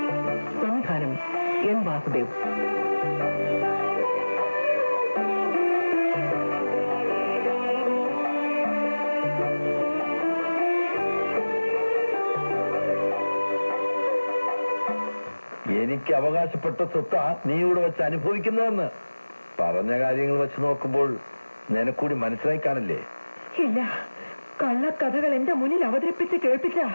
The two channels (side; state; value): both; inverted; correlation -1.00